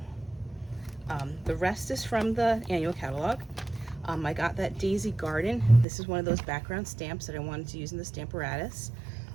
rest is from the annual catalog. I got that Daisy Garden. This is one of those background stamps that I wanted to use in the Stamparatus.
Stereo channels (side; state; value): left; drops out; at 5.9 s